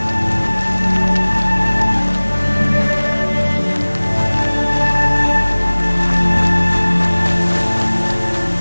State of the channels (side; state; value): both; inverted; correlation -1.00